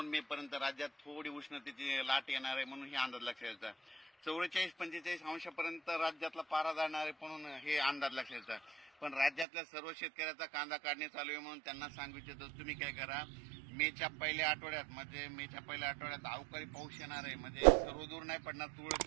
मे पर्यंत राज्यात थोडी उष्णतेची लाट येणार आहे म्हणून हे अंदाज लक्षात येतात. 44-45 अंशापर्यंत राज्यातला पारा जाणार आहे म्हणून हे अंदाज लक्षात येतात. पण राज्यातल्या सर्व शेतकऱ्याचा कांदा काढणे चालू आहे म्हणून त्यांना सांगू इच्छितो तुम्ही काय करा, मेच्या पहिल्या आठवड्यात अवकाळी पाऊस येणार आहे. म्हणजे सर्वदूर नाही पडणार, तुरळक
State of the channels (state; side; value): drops out; left; at 9.5 s